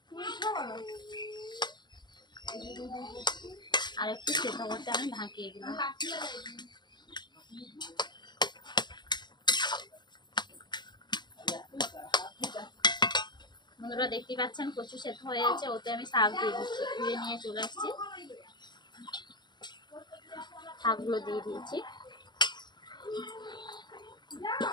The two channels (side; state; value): right; late; 0.21 ms